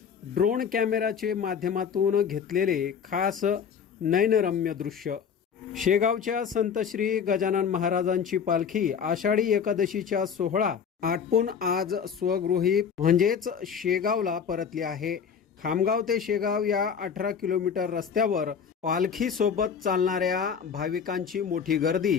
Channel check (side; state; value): right; quieter; 7.0 dB